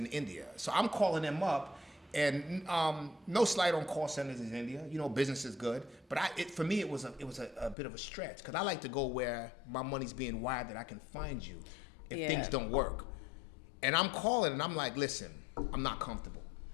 India, so I'm calling them up. And no slight on call centers in India. Business is good. But for me, it was a bit of a stretch because I like to go where my money's being wired that I can find you if things don't work. And I'm calling and I'm like, listen, I'm not comfortable.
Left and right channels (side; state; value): right; drops out; at 7.8 s